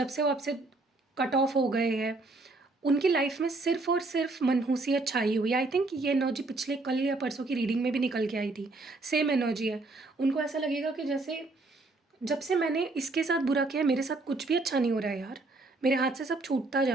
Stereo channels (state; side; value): quieter; left; 3.2 dB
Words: से वो आपसे कट ऑफ हो गए हैं, उनकी लाइफ में सिर्फ़ और सिर्फ़ मनहूसियत छाई हुई है। आई थिंक ये एनर्जी पिछले कल या परसों की रीडिंग में भी निकल के आई थी, सेम एनर्जी है। उनको ऐसा लगेगा कि जैसे जब से मैंने इसके साथ बुरा किया है, मेरे साथ कुछ भी अच्छा नहीं हो रहा है यार, मेरे हाथ से सब छूटता